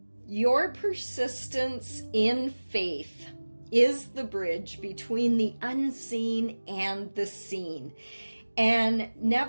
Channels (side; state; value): both; inverted; correlation -1.00